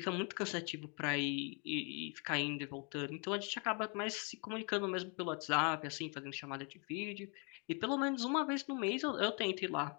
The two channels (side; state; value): right; quieter; 35.8 dB